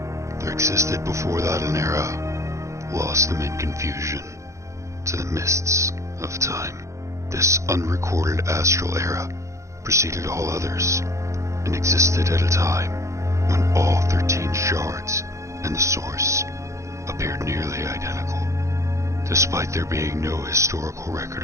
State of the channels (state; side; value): late; left; 0.15 ms